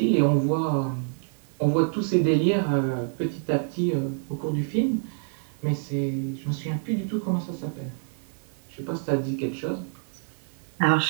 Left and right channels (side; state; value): left; silent; 57 dB below the other